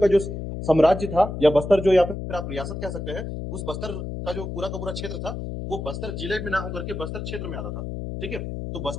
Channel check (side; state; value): left; noise; hum, 6 dB below the sound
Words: जो साम्राज्य था या बस्तर जो या फिर आप रियासत कह सकते हैं, उस बस्तर का जो पूरा का पूरा क्षेत्र था वो बस्तर जिले में ना होकर के बस्तर क्षेत्र में आता था, ठीक है। तो